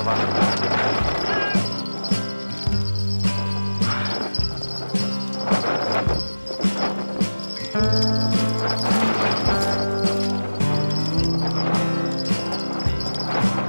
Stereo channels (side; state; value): both; inverted; correlation -1.00